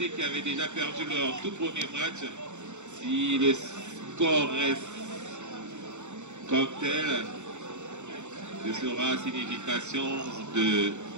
qui avait déjà perdu leur tout premier match, si le score reste comme tel, ce sera signification de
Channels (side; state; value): left; late; 0.84 ms